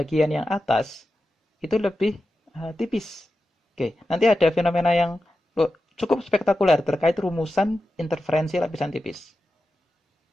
yang atas itu lebih tipis. Oke, nanti ada fenomena yang cukup spektakuler terkait rumusan interferensi lapisan tipis.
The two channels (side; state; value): both; normal; correlation 0.91